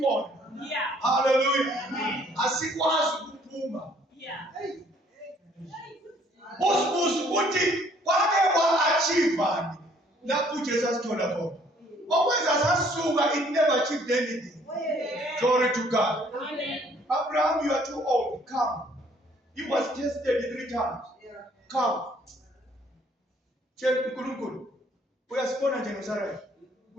Hallelujah. Asikwazi ukuphuma. Busibusi uthi kwake kwa-achievani lapho uJesu asithola khona. Okwenza sasuka, it never achieved anything. Glory to God. Abraham, you are too old. Come. He was tested 3 times. Come. We are born in Jerusalem.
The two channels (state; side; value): normal; both; correlation 0.61